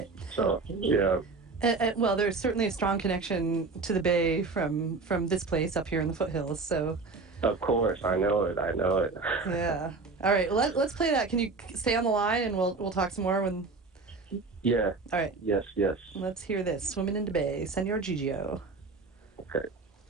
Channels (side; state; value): left; quieter; 4.0 dB